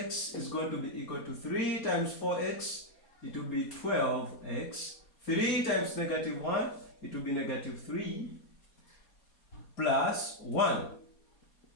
is going to be equal to 3 times 4x, it will be 12x. 3 times negative 1, it will be negative 3 plus 1.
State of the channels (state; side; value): late; right; 4.2 ms